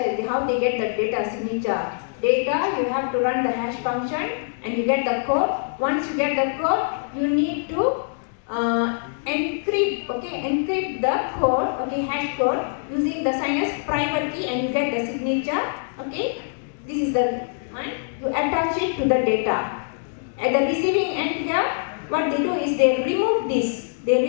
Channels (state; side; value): silent; right; digital silence